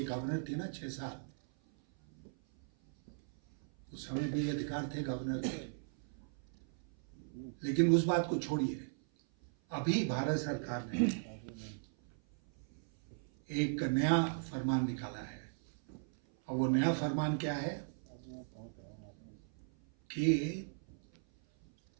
गवर्नर थे ना 6 साल, उस समय भी अधिकार थे गवर्नर के। लेकिन उस बात को छोड़िए, अभी भारत सरकार ने एक नया फरमान निकाला है, और वो नया फरमान क्या है कि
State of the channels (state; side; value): silent; left; 53 dB below the other